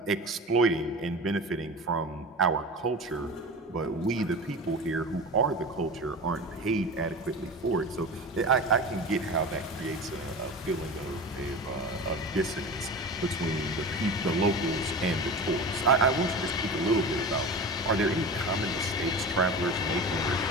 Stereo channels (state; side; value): normal; both; correlation 0.31